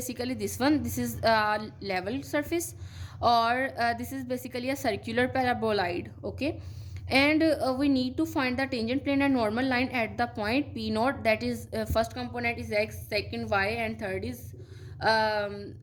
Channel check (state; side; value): identical; both; correlation 1.00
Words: this one. This is level surface, or this is basically a circular paraboloid. Okay, and we need to find the tangent plane and normal line at the point P naught, that is first component is x, second y, and third is